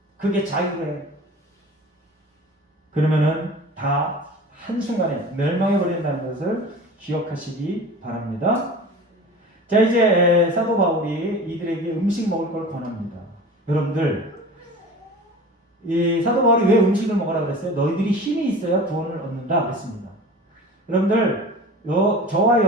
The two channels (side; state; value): both; normal; correlation 0.38